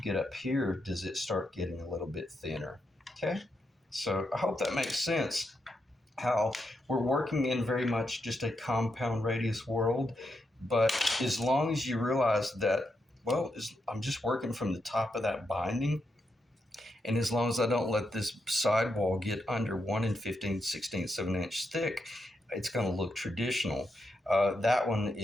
get up here does it start getting a little bit thinner. Okay, so I hope that makes sense. How we're working in very much just a compound radius world, but as long as you realize that, well, I'm just working from the top of that binding, and as long as I don't let this sidewall get under 1 15/16 of an inch thick, it's going to look traditional. That one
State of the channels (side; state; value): both; normal; correlation 0.83